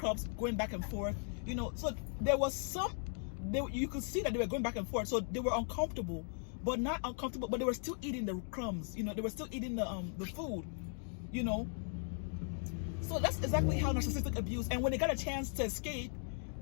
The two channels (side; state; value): right; silent; 53 dB below the other